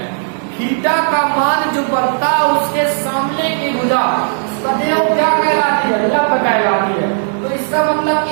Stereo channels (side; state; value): left; silent; digital silence